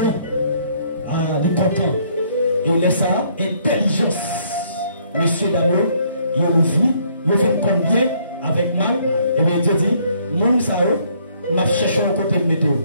il est content. Il laisse ça, intelligence. Monsieur Damien, il a vu, il fait combien avec mal, et bien Dieu dit, mon ça, m'a cherché un côté de météo.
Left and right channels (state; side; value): inverted; both; correlation -0.65